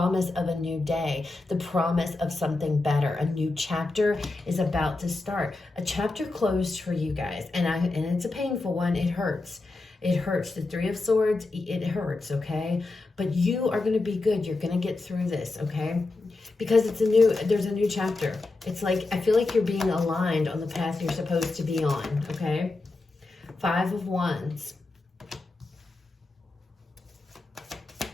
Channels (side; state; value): right; quieter; 3.3 dB